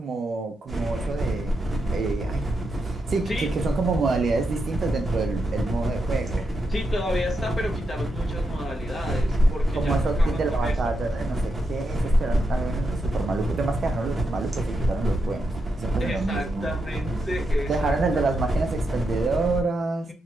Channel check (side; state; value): both; normal; correlation 0.84